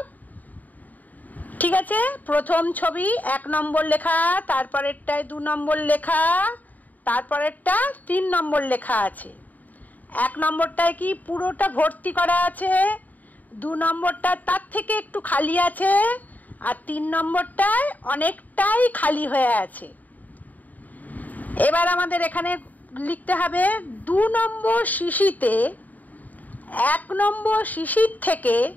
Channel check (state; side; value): late; right; 0.079 ms